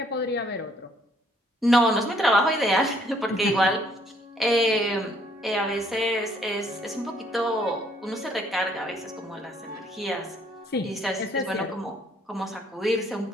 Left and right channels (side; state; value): both; normal; correlation 0.65